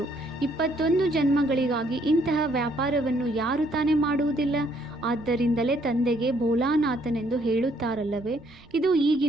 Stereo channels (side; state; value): right; noise; rumble, 25 dB below the sound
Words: 21 ಜನ್ಮಗಳಿಗಾಗಿ ಇಂತಹ ವ್ಯಾಪಾರವನ್ನು ಯಾರು ತಾನೇ ಮಾಡುವುದಿಲ್ಲ? ಆದ್ದರಿಂದಲೇ ತಂದೆಗೆ ಭೋಲಾನಾಥನೆಂದು ಹೇಳುತ್ತಾರಲ್ಲವೇ? ಇದು